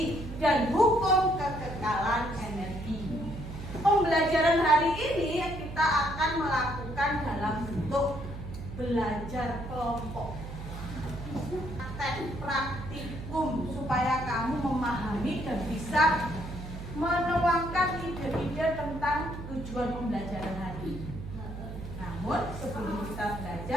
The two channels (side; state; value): right; noise; hum, 9 dB below the sound